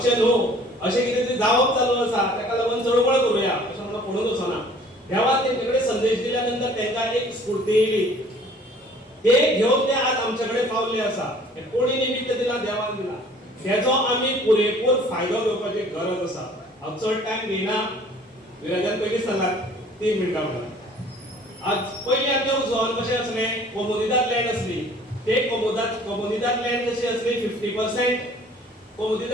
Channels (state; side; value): normal; both; correlation 0.53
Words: न्हू अशें कितें तरी जावप चालू आसा, ताका लागून चळवळ करुया अशें म्हणून कोणूच वचना. देवान तेंचे कडेन संदेश दिल्या नंतर तांकां एक स्फूर्ती येयली. ते घेवन ते आज आमचे कडेन पावल्ले आसा. कोणी निमित्त दिला? देवान दिला. तेजो आमी पुरेपूर फायदो घेवपाची गरज आसा. हांव चड टायम घेयना. विराजान पयलीं सांगला 3 मिनटां म्हणून. आज पयलीं आमचें उजवान कशें आसलें, कोमुनिदाद लँड आसली. ते कोमुनिदाद लँड कशी आसली 50%